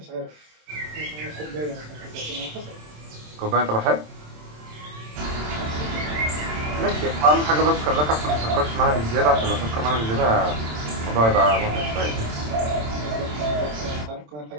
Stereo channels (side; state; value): left; late; 27 ms